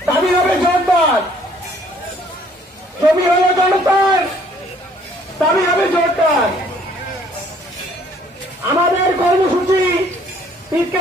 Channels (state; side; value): normal; both; correlation 0.60